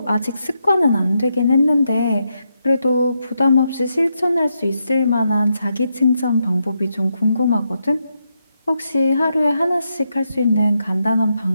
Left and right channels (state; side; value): inverted; both; correlation -0.83